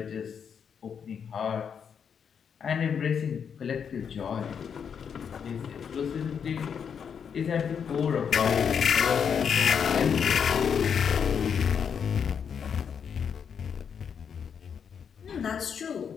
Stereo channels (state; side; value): quieter; right; 7.2 dB